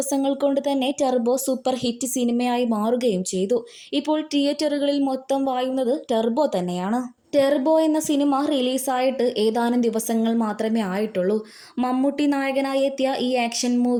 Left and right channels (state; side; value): identical; both; correlation 1.00